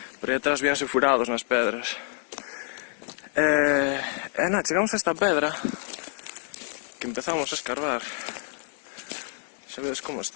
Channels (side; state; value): right; silent; 60 dB below the other